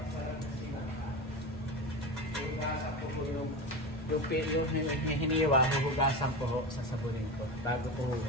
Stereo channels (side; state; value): both; normal; correlation 0.23